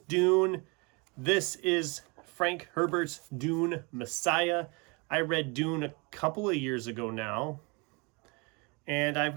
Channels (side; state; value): left; quieter; 29.7 dB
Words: Dune. This is Frank Herbert's Dune Messiah. I read Dune a couple of years ago now. And I've